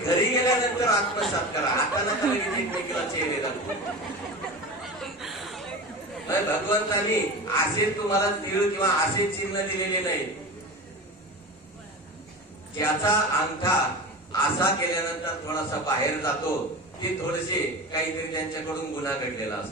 गेल्यानंतर आत्मसात करा. आता नका लगेच एकमेकीला चेहरे दाखवू. भगवंतानी असे तुम्हाला तीळ किंवा असे चिन्ह दिलेले नाही. ज्याचा अंगठा असा केल्यानंतर थोडासा बाहेर जातो ते थोडेसे काहीतरी त्यांच्याकडून गुन्हा घडलेला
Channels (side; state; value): both; normal; correlation 0.30